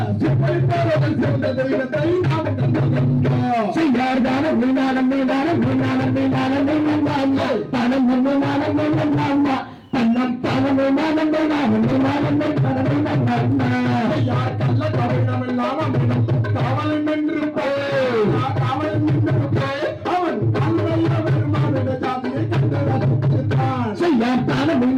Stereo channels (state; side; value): identical; both; correlation 1.00